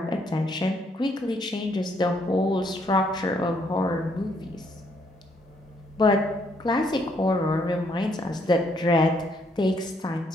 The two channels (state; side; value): normal; both; correlation 0.70